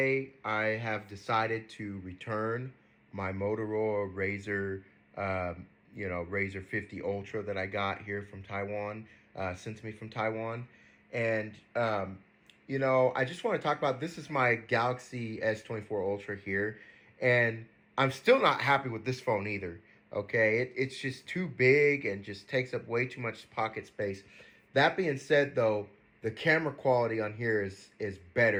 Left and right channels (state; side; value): identical; both; correlation 1.00